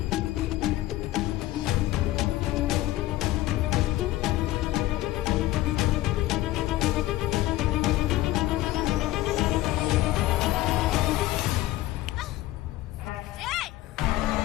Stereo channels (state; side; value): quieter; right; 16.5 dB